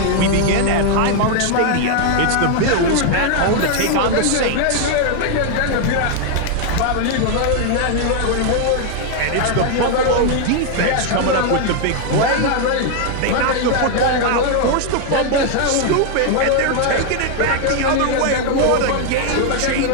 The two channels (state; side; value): different; both; correlation 0.00